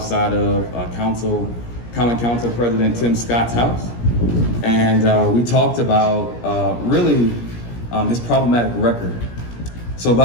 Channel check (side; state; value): right; late; 17 ms